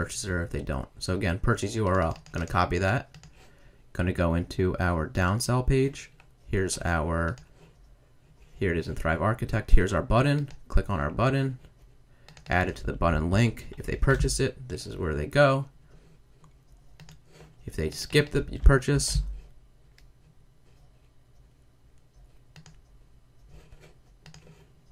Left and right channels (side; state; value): both; identical; correlation 1.00